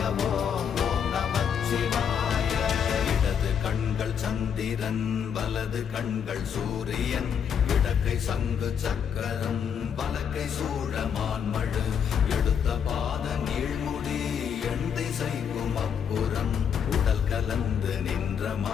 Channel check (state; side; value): quieter; right; 7.7 dB